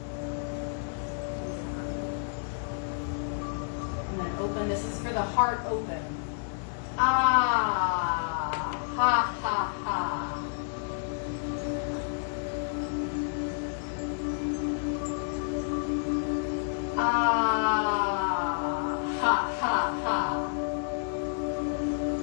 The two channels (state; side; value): silent; right; 58 dB below the other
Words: And then open. This is for the heart open. Ah, ha, ha, ha. Ah, ha, ha, ha.